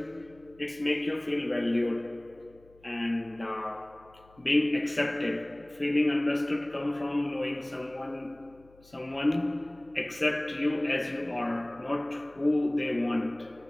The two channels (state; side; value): noise; left; hum, 27 dB below the sound